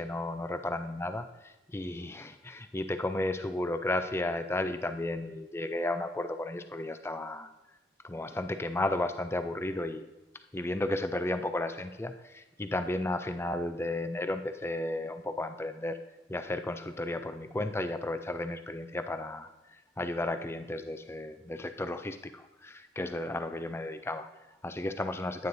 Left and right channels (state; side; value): normal; both; correlation 0.74